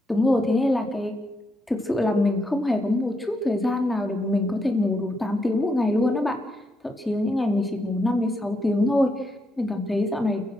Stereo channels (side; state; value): both; normal; correlation 0.80